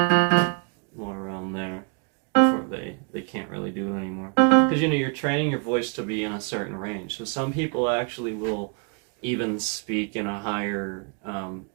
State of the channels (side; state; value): left; quieter; 38.2 dB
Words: more around there before they can't really do it anymore. Because, you know, you're training your voice to be in a certain range. So some people actually will even speak in a higher